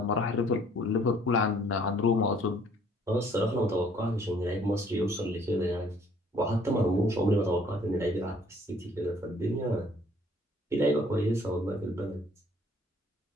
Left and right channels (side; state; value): both; normal; correlation 0.59